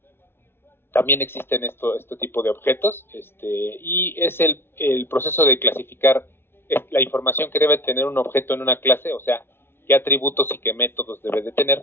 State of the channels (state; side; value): late; right; 0.11 ms